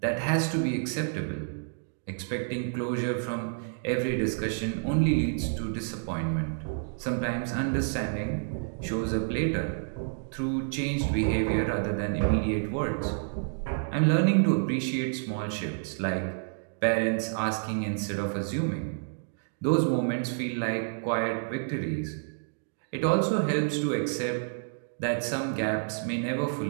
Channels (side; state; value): left; silent; digital silence